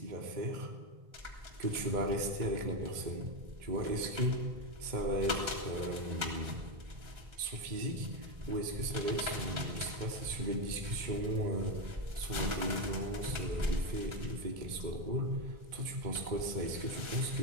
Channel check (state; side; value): late; left; 1.3 ms